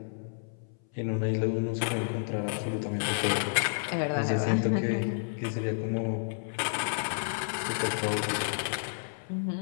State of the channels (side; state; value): right; silent; 57 dB below the other